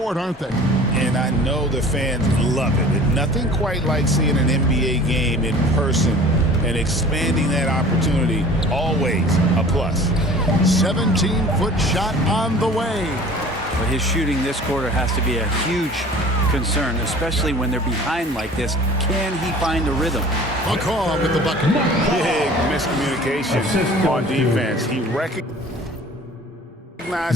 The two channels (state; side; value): normal; both; correlation 0.45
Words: aren't they? And I know the fans love it. Nothing quite like seeing an NBA game in person and expanding that opportunity. Always a plus. 17-foot shot on the way. But his shooting this quarter has to be a huge concern, especially when they're behind like this. Can he find a rhythm? McCaw with the bucket. Big miscommunication on defense. He recognizes